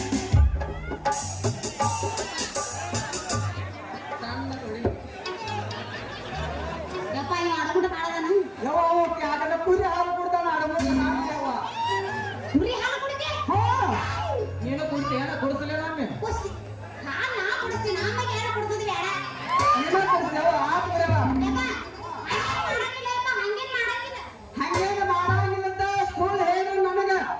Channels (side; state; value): both; identical; correlation 1.00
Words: ಕುರಿ ಹಾಲು ಕೊಡ್ತಾನ ನೀನು ಕುಡ್ತೀಯ ಕೊಡಿಸಲೇ ನಮ್ಮೆ ಹಂಗೇನು ಮಾಡಂಗಿಲ್ಲಂತ ಸ್ಕೂಲ್ ಹೇಳು ನನಗ